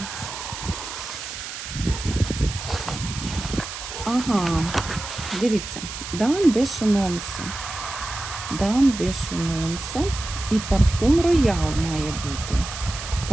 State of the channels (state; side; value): noise; right; hiss, 9 dB below the sound